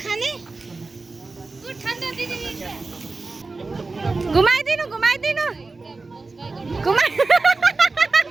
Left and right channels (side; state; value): left; quieter; 3.7 dB